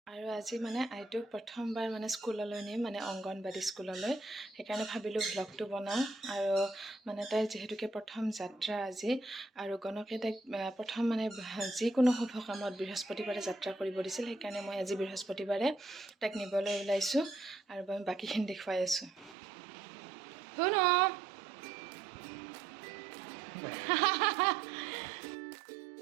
আৰু আজি মানে আইটোক প্ৰথমবাৰ মানে স্কুললৈ নিম, মানে অংগনবাড়ী স্কুললৈ। সেইকাৰণে ভাবিলোঁ ভ্লগটো বনাওঁ। আৰু মানে তাইৰ যিহেতুকে প্ৰথম যাত্ৰা আজি, আৰু গণকে তাইক প্ৰথম মানে যিকোনো শুভ কামত বৃহস্পতিবাৰে যাত্ৰা কৰিব দিছিল। সেইকাৰণে মই আজি বৃহস্পতিবাৰে তাইক নিবলৈ ওলাইছোঁ আৰু মই বাকীখিনি দেখুৱাই আছোঁ। শুনো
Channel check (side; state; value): left; drops out; at 19.4 s